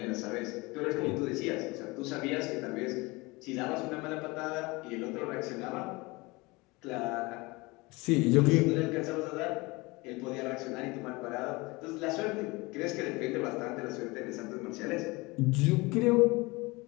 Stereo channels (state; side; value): quieter; right; 24.0 dB